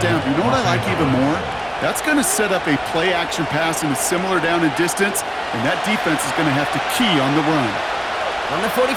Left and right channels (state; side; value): identical; both; correlation 1.00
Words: down. You know what I like even more? That's going to set up a play-action pass in a similar down and distance, and that defense is going to have to key on the run. On the